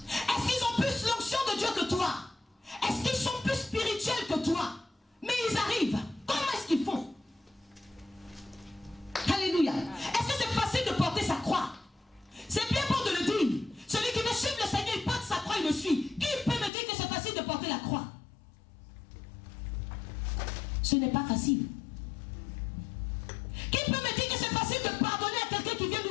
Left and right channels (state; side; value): drops out; right; at 16.7 s